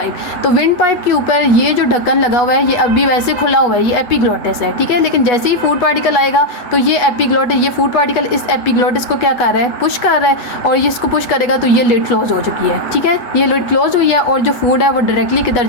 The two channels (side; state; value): right; late; 8.2 ms